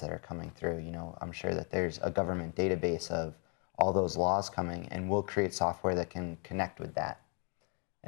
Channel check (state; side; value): quieter; right; 36.6 dB